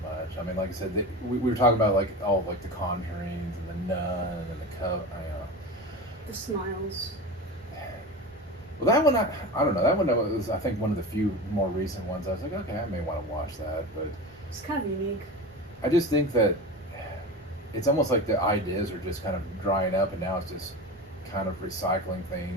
much. I mean, like I said, we were talking about like all like the Conjurings and the Nun and the Coven. The Smiles. Well, that one, I don't know. That one was, I think, one of the few more recent ones. I was like, okay, I may want to watch that, but It's kind of unique. I just think that it's almost like the ideas are just kind of drying up, and now it's just kind of recycling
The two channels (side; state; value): both; normal; correlation 0.28